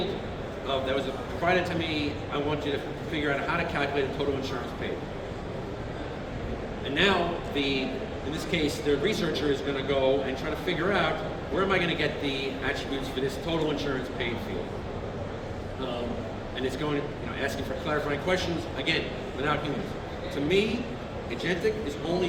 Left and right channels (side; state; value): both; identical; correlation 1.00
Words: that was provided to me. I want you to figure out how to calculate the total insurance paid. And now, in this case, the researcher is going to go and try to figure out where am I going to get the attributes for this total insurance paid field. And it's going, asking for clarifying questions, again, without humans. To me, agentic is only